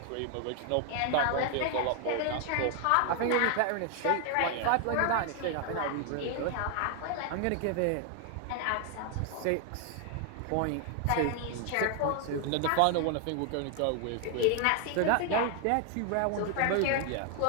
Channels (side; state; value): both; different; correlation 0.00